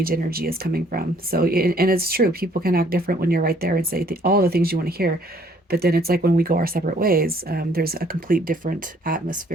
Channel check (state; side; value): normal; both; correlation 0.62